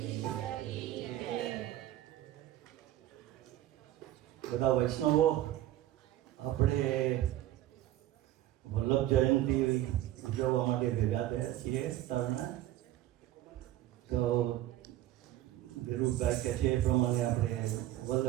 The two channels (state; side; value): quieter; left; 14.0 dB